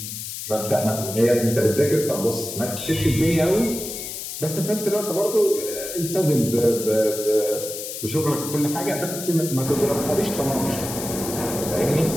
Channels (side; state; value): left; noise; hiss, 7 dB below the sound